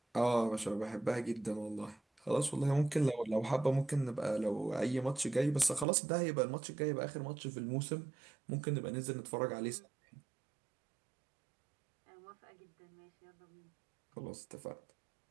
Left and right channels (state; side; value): drops out; left; at 5.9 s